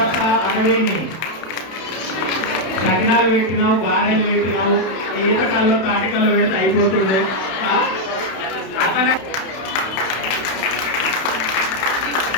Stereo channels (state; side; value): late; right; 31 ms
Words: 60 సకినాలు పెట్టినావు, గారెలు పెట్టినావు, ఈతకాల్లో తాటికల్లో పెడితే అయిపోతుండే.